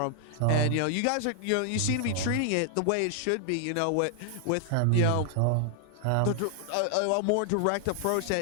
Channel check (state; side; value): different; both; correlation 0.00